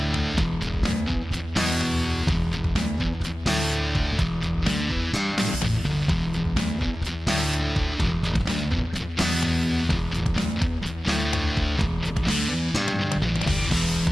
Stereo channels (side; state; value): both; normal; correlation 0.95